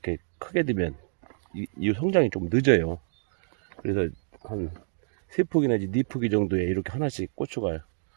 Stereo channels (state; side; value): silent; left; digital silence